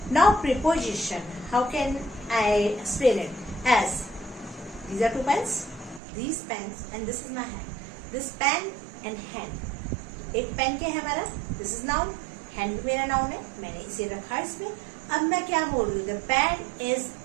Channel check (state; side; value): drops out; left; at 6.0 s